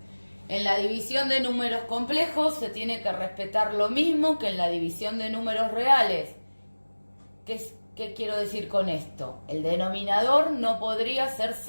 En la división de números complejos se tiene que respetar lo mismo que en la división de números reales. ¿Qué quiero decir con esto? El denominador no podría ser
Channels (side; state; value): both; inverted; correlation -1.00